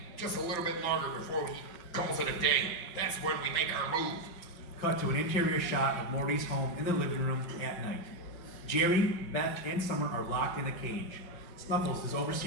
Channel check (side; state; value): right; late; 5.3 ms